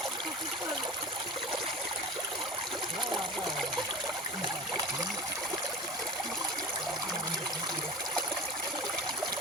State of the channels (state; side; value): normal; both; correlation 0.34